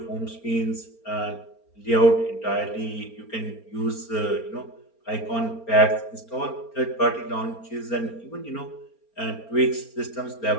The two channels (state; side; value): late; right; 4.3 ms